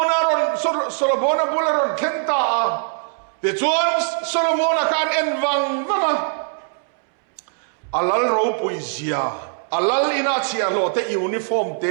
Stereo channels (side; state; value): left; silent; 65 dB below the other